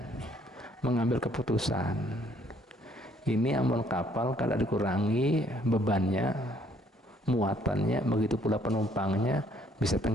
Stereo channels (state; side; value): normal; both; correlation 0.64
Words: mengambil keputusan. Ini amun kapal kada dikurangi bebannya, muatannya, begitu pula penumpangnya, bisa